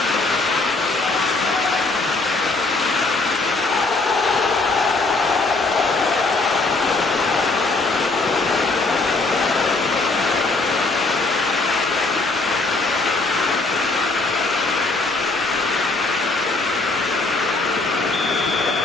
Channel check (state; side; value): quieter; right; 3.4 dB